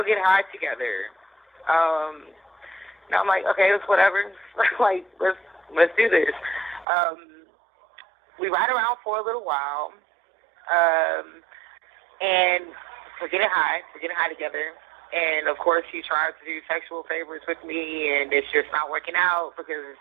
get high together. And I'm like, okay, it's whatever. Like, let's do this. We ride around for a little while. And we're getting high together. And of course, he tries to do sexual favors with me, and it's just not working out because it's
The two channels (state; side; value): drops out; left; at 6.9 s